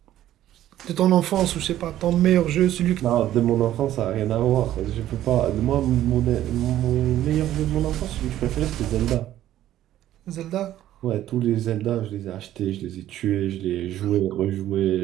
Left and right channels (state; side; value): quieter; left; 12.9 dB